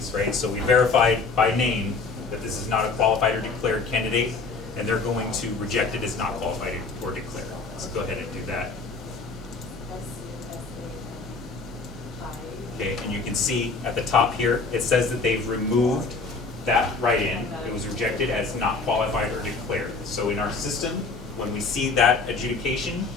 right? So we verified by name that this is not a qualified or declared candidate, and they're going to reject it as not qualified or declared. So go ahead and do that. Okay, and you can see at the top here, it says that they've removed that write-in. It was rejected as not qualified or declared. So in our system, when we see that adjudication,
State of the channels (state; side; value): quieter; right; 4.1 dB